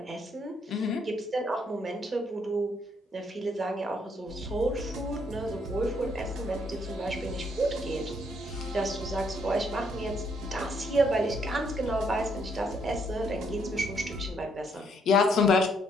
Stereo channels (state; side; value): normal; both; correlation 0.71